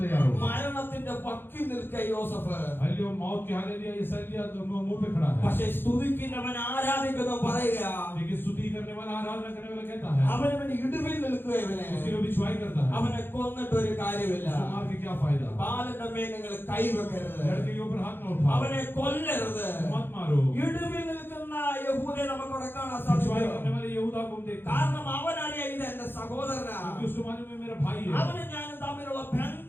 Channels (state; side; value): late; right; 0.10 ms